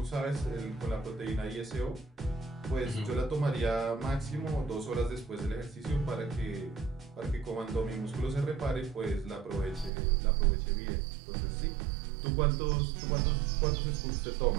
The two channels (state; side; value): drops out; left; at 9.9 s